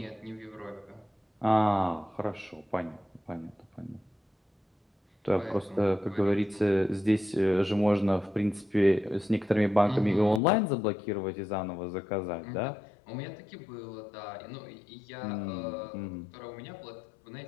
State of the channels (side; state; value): right; drops out; at 10.4 s